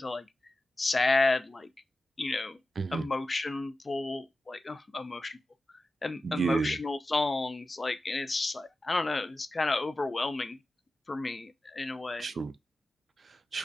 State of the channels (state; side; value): normal; both; correlation 0.94